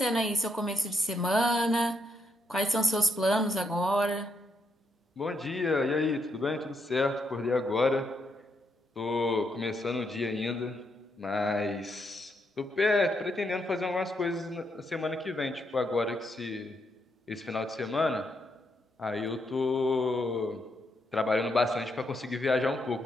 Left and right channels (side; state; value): both; normal; correlation 0.78